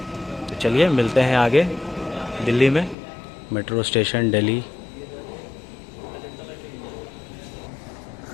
तो चलिए मिलते हैं आगे दिल्ली में। Metro station Delhi.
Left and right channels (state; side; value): drops out; right; at 3.0 s